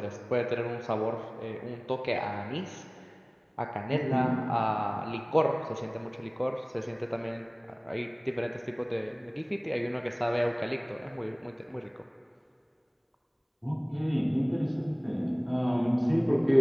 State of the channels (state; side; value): identical; both; correlation 1.00